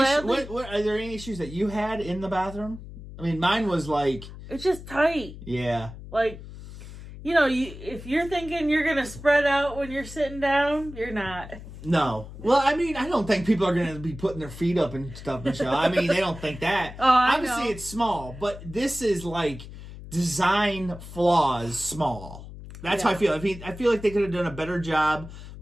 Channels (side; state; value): left; noise; hum, 14 dB below the sound